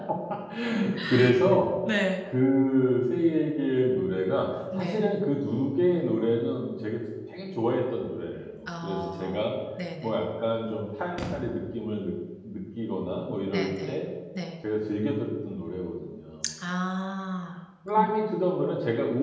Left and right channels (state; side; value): identical; both; correlation 1.00